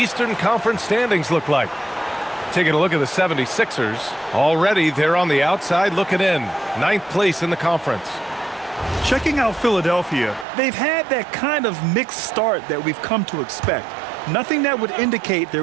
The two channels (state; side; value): drops out; left; at 10.5 s